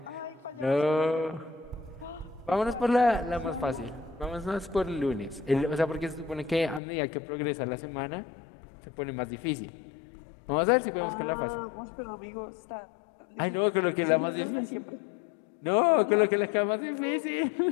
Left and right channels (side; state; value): right; drops out; at 6.8 s